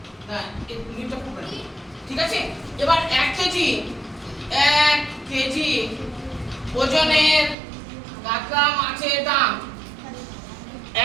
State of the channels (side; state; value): left; drops out; at 7.6 s